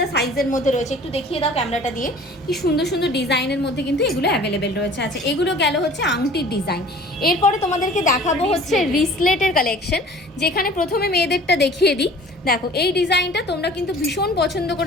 সাইজের মধ্যে রয়েছে। একটু দেখিয়ে দাও ক্যামেরাটা দিয়ে, কি সুন্দর সুন্দর ডিজাইনের মধ্যে কিন্তু এগুলো অ্যাভেলেবেল রয়েছে। আচ্ছা, এগুলো গেল হচ্ছে আংটির ডিজাইন। এরপরে তোমাদেরকে দেখাবো হচ্ছে রিসলেটের কালেকশন, যেখানে প্রথমে মেয়েদেরটা দেখিয়ে দিই। দেখো এই ডিজাইনটা তোমরা কিন্তু ভীষণ পছন্দ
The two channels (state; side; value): normal; both; correlation 0.47